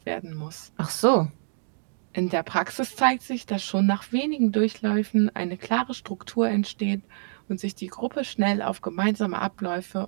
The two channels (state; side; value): silent; left; digital silence